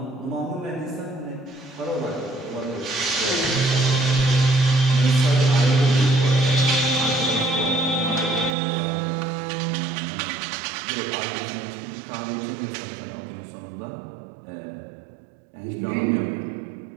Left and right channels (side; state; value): left; drops out; at 8.6 s